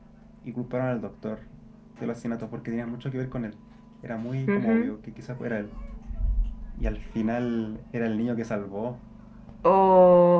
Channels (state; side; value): identical; both; correlation 1.00